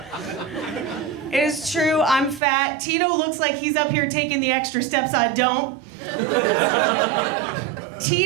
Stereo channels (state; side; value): drops out; left; at 2.4 s